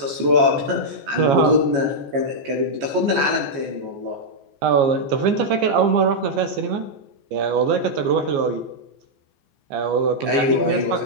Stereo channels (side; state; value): left; late; 14 ms